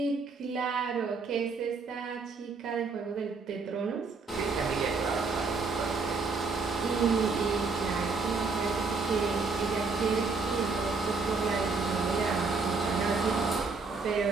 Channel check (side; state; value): left; quieter; 4.3 dB